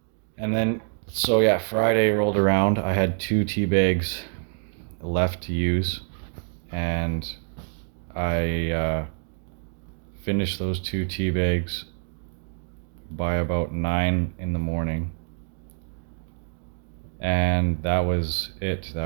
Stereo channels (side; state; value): left; silent; digital silence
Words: And then, so yeah, Friday rolled around. I had 2 tea bags left to use, and I finished those 2 tea bags by about 9 in the morning. And that was it. That